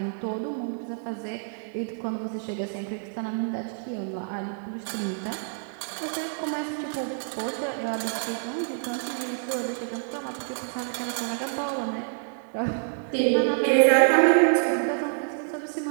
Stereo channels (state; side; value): silent; left; 55 dB below the other